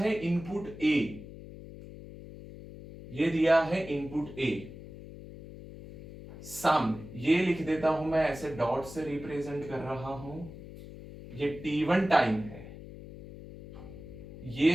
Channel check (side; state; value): left; noise; hum, 14 dB below the sound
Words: इनपुट A, ये दिया है इनपुट A। सामने ये लिख देता हूं मैं, ऐसे डॉट से रिप्रेजेंट कर रहा हूं। ये T1 टाइम है, ये